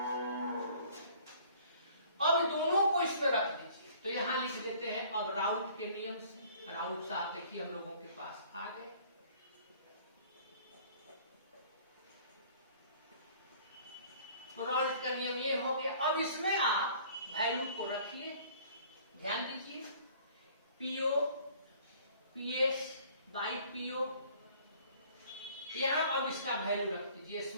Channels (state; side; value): inverted; both; correlation -0.53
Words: अब दोनों को इसमें रख दीजिए, तो यहां लिख देते हैं अब राउंड के नियम से। राउंड से आप देखिए हम लोगों के पास आ गए। तो राउंड का नियम ये हो गया। अब इसमें आप वैल्यू को रखिए, ध्यान दीजिए, पीओ पीएस बाई पीओ, यहां अब इसका वैल्यू रख दीजिए,